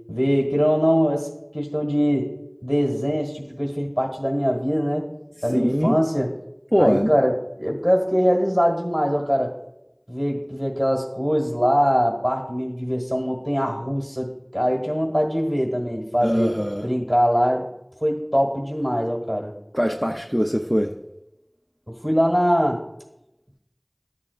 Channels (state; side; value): identical; both; correlation 1.00